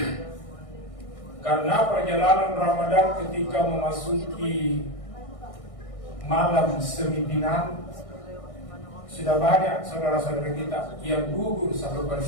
Karena perjalanan Ramadan ketika memasuki malam sembilan, sudah banyak saudara-saudara kita yang gugur satu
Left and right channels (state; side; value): late; right; 1.6 ms